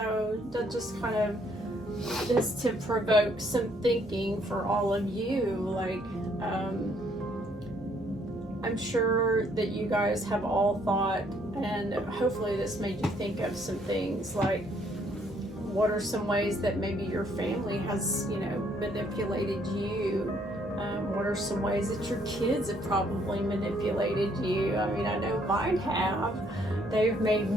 that just kind of is to provoke some thinking for all of you. I'm sure that you guys have all thought, and hopefully this made you think of some things like, what are some ways that maybe your family has, manipulated you? What are some ways that your kids have probably manipulated you? I know mine have. They've made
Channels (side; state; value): both; normal; correlation 0.67